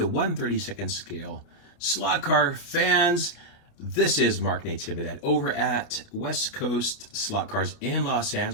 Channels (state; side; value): late; right; 28 ms